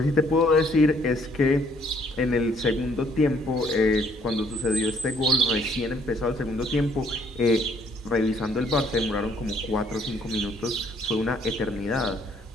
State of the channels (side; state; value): both; normal; correlation 0.64